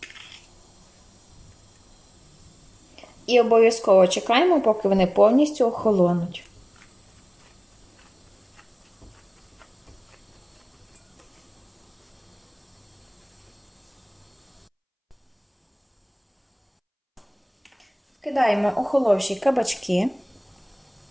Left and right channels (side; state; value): both; identical; correlation 1.00